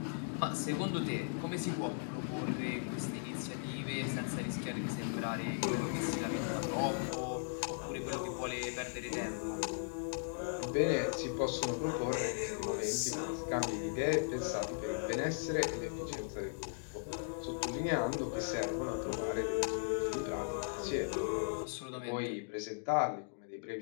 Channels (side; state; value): right; silent; digital silence